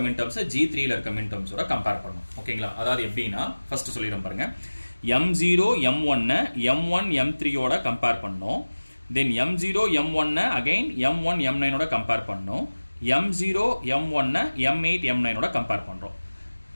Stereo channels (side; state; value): both; inverted; correlation -1.00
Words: மின் டேர்ம்ஸை G3ல இருக்க மின் டேர்ம்ஸோட கம்பேர் பண்ணும். ஓகேங்களா, அதாவது எப்படின்னா ஃபர்ஸ்ட் சொல்லிடுறோம் பாருங்க. M0 M1 M1 M3ஓட கம்பேர் பண்ணும், தென் M0 M1 again M1 M9ஓட compare பண்ணும், M0 M1 M8 M9ஓட கம்பேர் பண்றோம்.